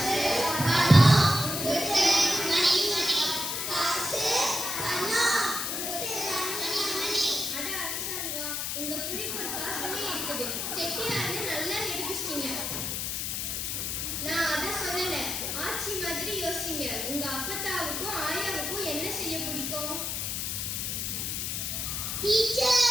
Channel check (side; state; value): left; noise; hiss, 2 dB below the sound